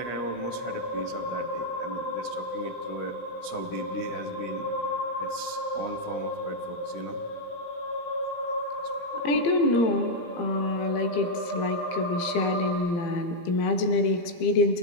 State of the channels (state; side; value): late; right; 17 ms